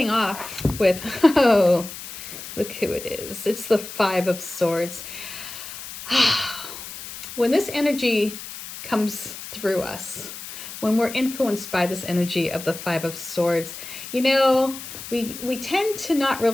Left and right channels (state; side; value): noise; left; hiss, 11 dB below the sound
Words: off with, oh, look who it is. It's the Five of Swords. When this energy comes through us, when we're influenced by this energy of the Five of Swords, you know, we tend to not